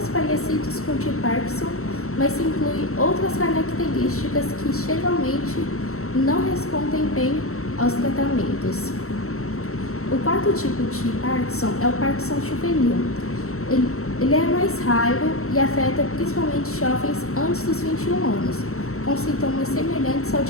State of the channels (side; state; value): right; late; 0.63 ms